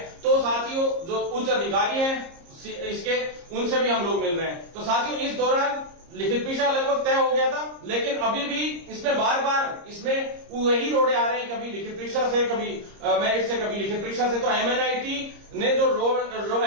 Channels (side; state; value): left; late; 30 ms